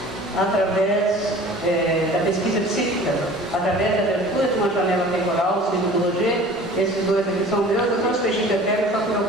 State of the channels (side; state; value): both; normal; correlation 0.44